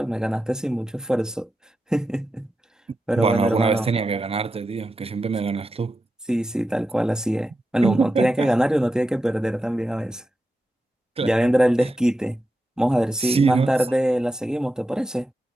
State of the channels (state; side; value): normal; both; correlation 0.89